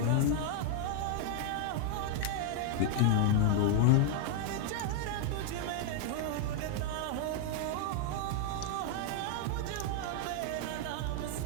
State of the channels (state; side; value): different; both; correlation 0.00